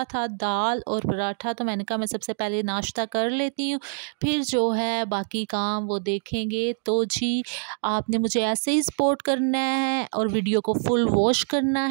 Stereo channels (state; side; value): silent; left; digital silence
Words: था, दाल और पराठा। तो मैंने कहा मैं सबसे पहले नाश्ता कर लेती हूँ, फिर जो है बाकी काम वो देखेंगे। तो जी, आपने मुझे ऐसे ही सपोर्ट करना है और वीडियो को फुल वॉच करना